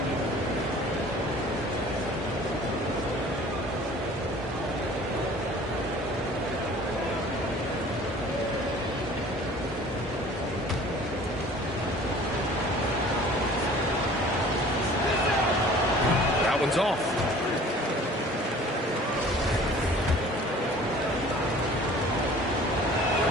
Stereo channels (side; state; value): both; normal; correlation 0.48